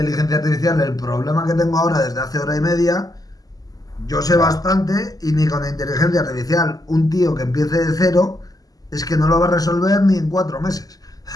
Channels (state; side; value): late; right; 0.18 ms